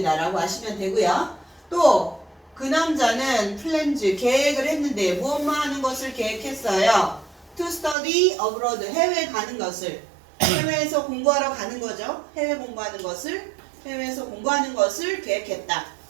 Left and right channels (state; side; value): drops out; left; at 8.0 s